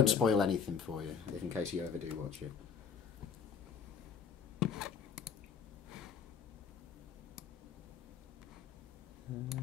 spoil anything for you, if in case you ever do watch it.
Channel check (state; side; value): quieter; right; 6.7 dB